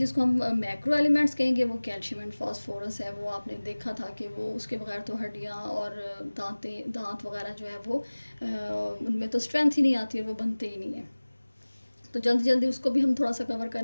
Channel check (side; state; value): both; inverted; correlation -1.00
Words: کو ہم میکرو ایلیمنٹس کہیں گے وہ کیلشیم اینڈ فاسفورس ہے. وہ آپ نے دیکھا تھا کہ وہ اس کے بغیر تو ہڈیاں اور دانت وغیرہ جو ہے وہ ان میں تو اسٹرینتھ ہی نہیں آتی اور وہ بنتے ہی نہیں ہیں. تو جلدی جلدی اس کو بھی ہم تھوڑا سا کور